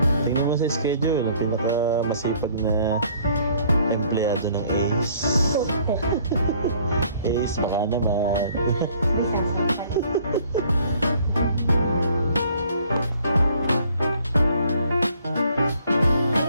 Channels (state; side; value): inverted; both; correlation -0.59